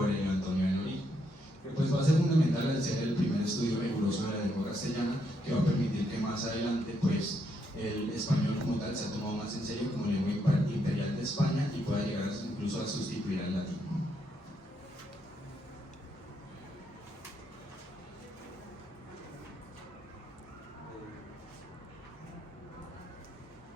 Antonio de Noriega, que pues va a ser fundamental al ser el primer estudio riguroso de la lengua castellana, que va a permitir que más adelante pues el español como tal se ha tomado más en serio como lengua imperial de España y pueda llegar incluso a sustituir al latín.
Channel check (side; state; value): both; normal; correlation 0.77